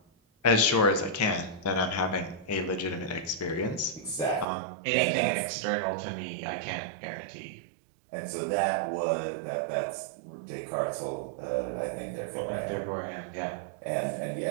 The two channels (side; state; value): left; drops out; at 4.5 s